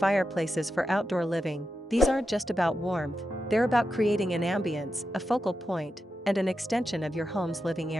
for outdoor living. These aren't just about warmth, they're about creating an ambience, a focal point, and an extension of your home's living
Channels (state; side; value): normal; both; correlation 0.89